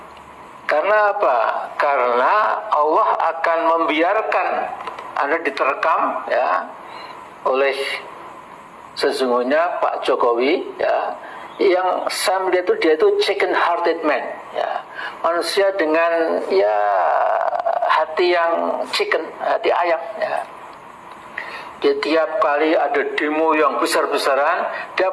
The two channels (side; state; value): both; identical; correlation 1.00